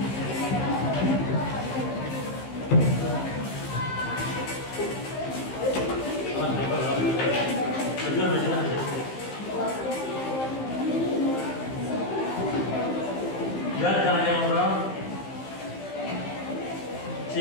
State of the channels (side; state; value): right; late; 15 ms